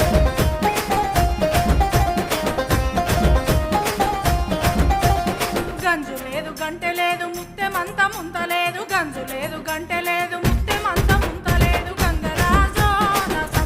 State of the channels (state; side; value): identical; both; correlation 1.00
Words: గంజు లేదు గంటె లేదు ముత్తెమంత ముంతలేదు గంజు లేదు గంటె లేదు ముత్తెమంత ముంతలేదు గంగరాజో నా